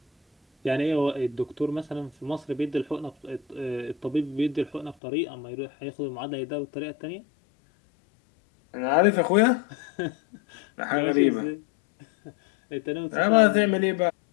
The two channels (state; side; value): drops out; right; at 5.0 s